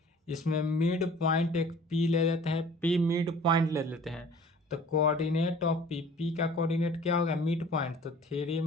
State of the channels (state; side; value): normal; both; correlation 0.48